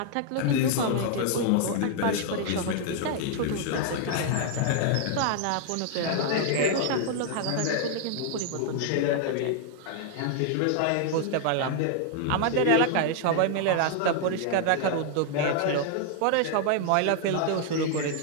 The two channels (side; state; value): both; different; correlation 0.00